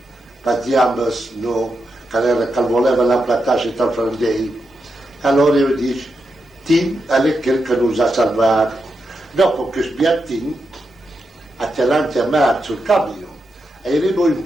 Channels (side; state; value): both; normal; correlation 0.86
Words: parliamo, no, che voleva la platascia tra frandei. Allora io dico, Tim è quel che nos ha salvato. Dopo che sbiattin, a chiamare a me sul cambio, e arrivo in